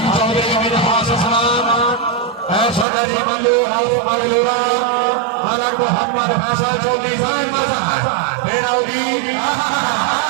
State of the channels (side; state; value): left; drops out; at 2.9 s